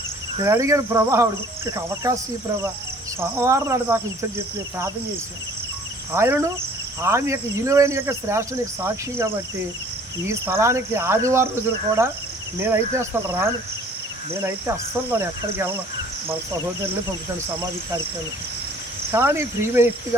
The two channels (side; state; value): both; normal; correlation 0.53